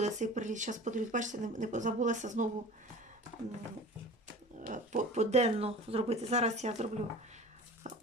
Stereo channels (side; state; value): both; normal; correlation 0.39